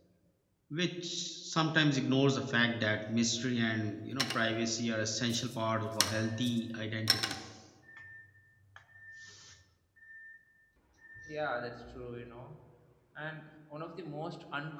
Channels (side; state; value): both; identical; correlation 1.00